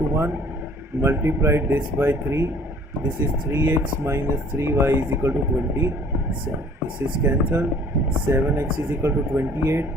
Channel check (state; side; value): normal; both; correlation 0.53